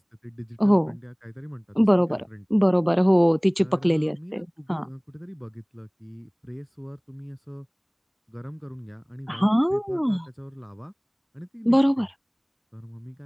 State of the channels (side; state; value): both; identical; correlation 1.00